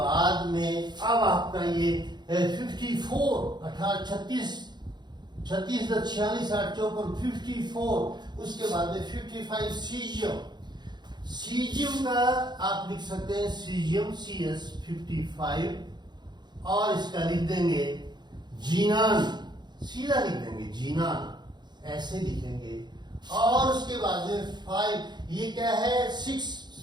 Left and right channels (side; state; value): left; late; 0.21 ms